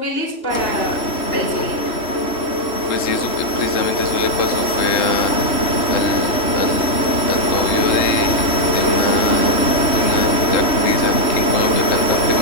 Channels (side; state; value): right; late; 3.1 ms